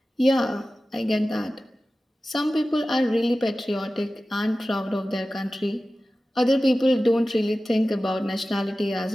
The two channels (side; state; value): both; normal; correlation 0.95